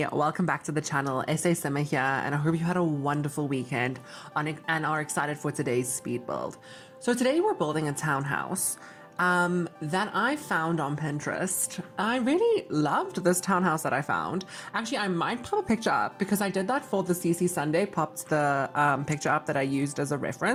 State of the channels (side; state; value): both; identical; correlation 1.00